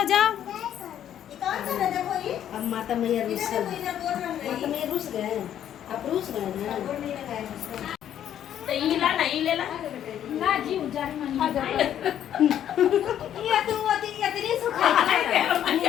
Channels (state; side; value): quieter; right; 10.4 dB